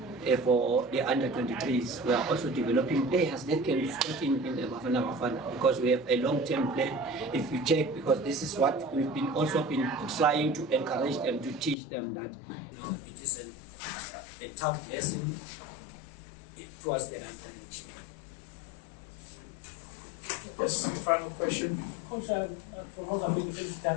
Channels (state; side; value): drops out; right; at 11.8 s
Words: for the under-23s, we are also developing players that can start in the Bafana, because we have a long-term plan. If you check, because this is what we've been trying to encourage them, to teach them that it is a tough lesson towards the under-23. Yes, final question. Coach, from Mozambique, I